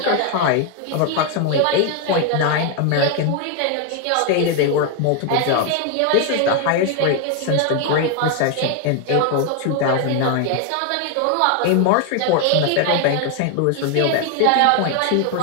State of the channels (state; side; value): different; both; correlation 0.01